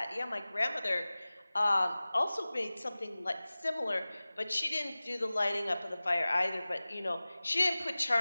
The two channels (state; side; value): inverted; both; correlation -0.98